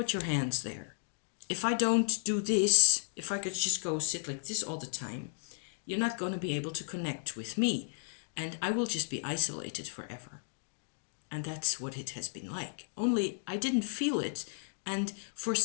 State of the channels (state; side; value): silent; right; digital silence